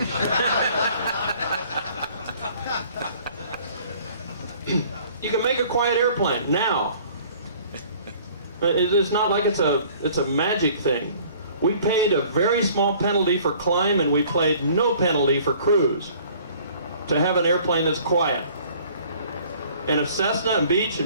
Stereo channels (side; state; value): both; inverted; correlation -0.53